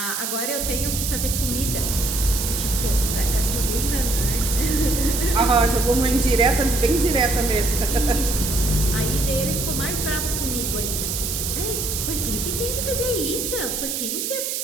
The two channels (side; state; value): right; noise; hiss, 2 dB below the sound